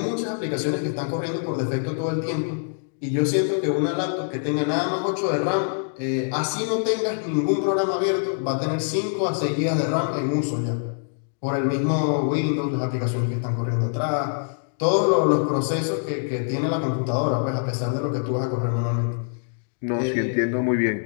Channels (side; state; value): right; silent; digital silence